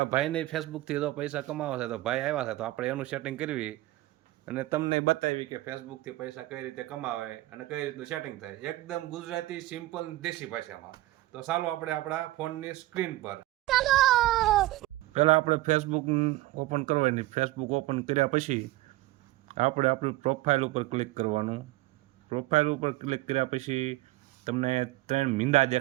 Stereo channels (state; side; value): quieter; left; 17.7 dB